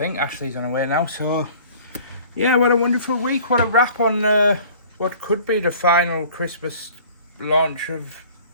Ashley's on her way now, so yeah, what a wonderful week. What a wrap on what could be the final Christmas launch of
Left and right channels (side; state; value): both; inverted; correlation -0.49